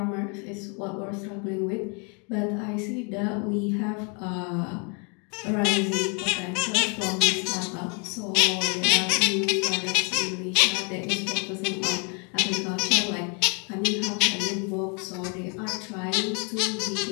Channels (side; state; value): right; quieter; 35.8 dB